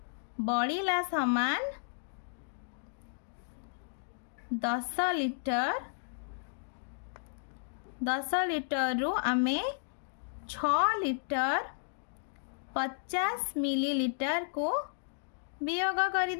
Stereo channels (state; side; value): silent; right; digital silence